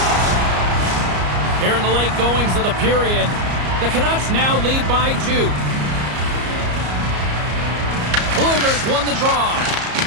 Here in the late goings of the period, the Canucks now lead by 2. Bluegers won the draw.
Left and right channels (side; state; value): left; late; 34 ms